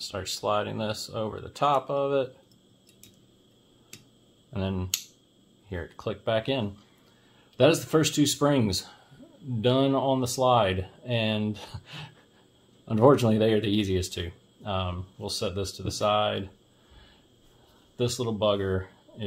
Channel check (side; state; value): both; identical; correlation 1.00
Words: sliding this over the top of it, and then hear it click back in. That is the first two springs done on the slide, and unfortunately they are the easiest two. We'll set this to the side. This little bugger